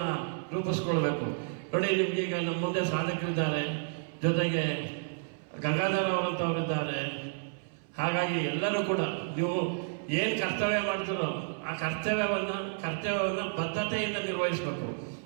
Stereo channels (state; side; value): silent; left; 57 dB below the other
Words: ರೂಪಿಸ್ಕೊಳ್ಬೇಕು. ನೋಡಿ, ನಿಮ್ಗೀಗ ನಮ್ಮ ಮುಂದೆ ಸಾಧಕರಿದ್ದಾರೆ, ಜೊತೆಗೆ ಗಂಗಾಧರ ಅವರಂಥವರಿದ್ದಾರೆ. ಹಾಗಾಗಿ ಎಲ್ಲರೂ ಕೂಡ ನೀವು ಏನು ಕರ್ತವ್ಯ ಮಾಡ್ತೀರೋ ಆ ಕರ್ತವ್ಯವನ್ನು ಬದ್ಧತೆಯಿಂದ ನಿರ್ವಹಿಸಬೇಕು.